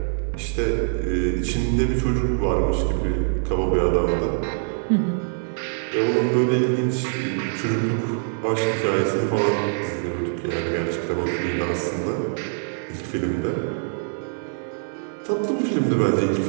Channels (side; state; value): left; silent; digital silence